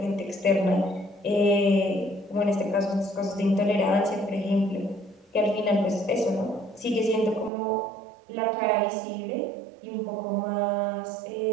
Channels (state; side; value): drops out; left; at 7.5 s